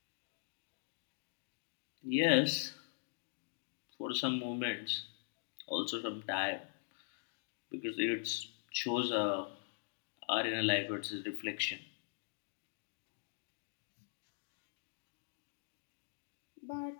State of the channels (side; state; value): right; silent; digital silence